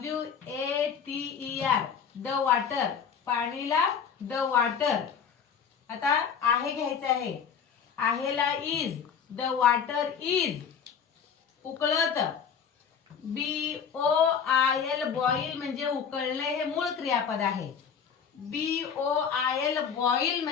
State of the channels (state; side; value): quieter; right; 7.1 dB